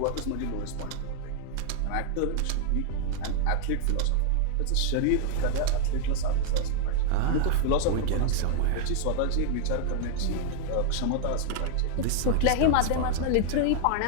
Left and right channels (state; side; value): different; both; correlation -0.01